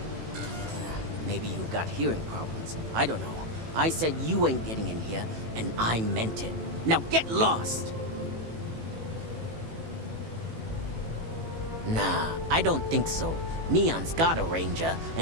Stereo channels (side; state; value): left; late; 18 ms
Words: Maybe you've got hearing problems. I don't know. I said you ain't getting in here, and I meant it. Now get lost! Nah, I don't think so. Neon's got a ranger,